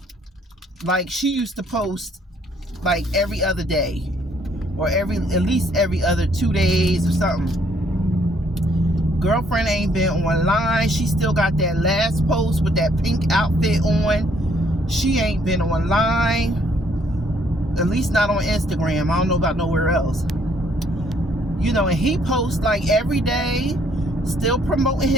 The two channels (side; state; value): both; normal; correlation 0.66